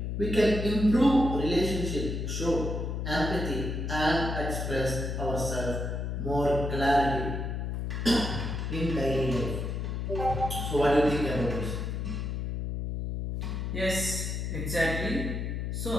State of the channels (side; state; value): left; noise; hum, 3 dB below the sound